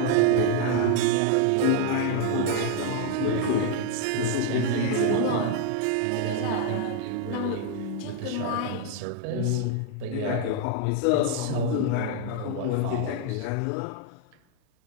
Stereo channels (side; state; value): both; different; correlation 0.00